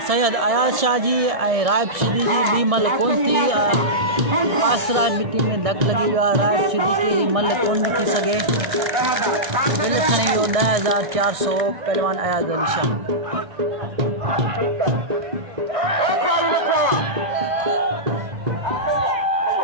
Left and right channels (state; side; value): late; left; 1.6 ms